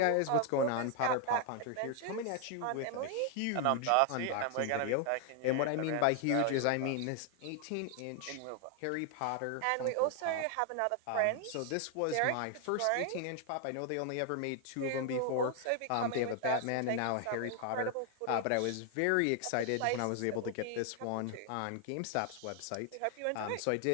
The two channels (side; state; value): both; different; correlation 0.00